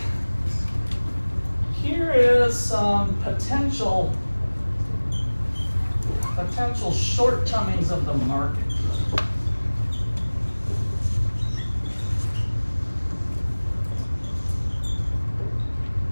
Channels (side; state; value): both; inverted; correlation -1.00